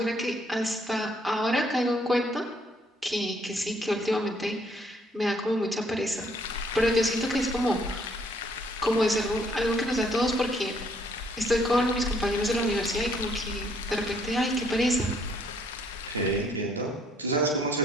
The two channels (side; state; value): both; normal; correlation 0.66